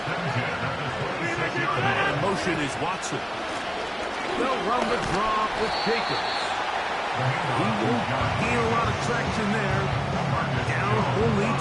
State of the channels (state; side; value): identical; both; correlation 1.00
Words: and 10 at the 26-yard line. And motion is Watson. They'll run the draw with Jacobs. He won't gain a lot of traction there. Down only